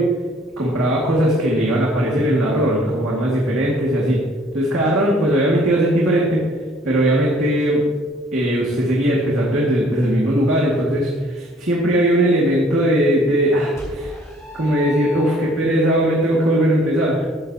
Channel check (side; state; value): both; normal; correlation 0.58